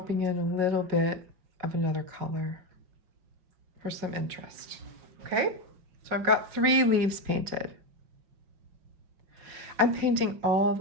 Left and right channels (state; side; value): late; left; 5.4 ms